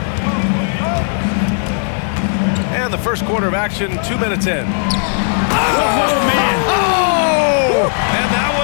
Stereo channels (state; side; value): silent; right; 58 dB below the other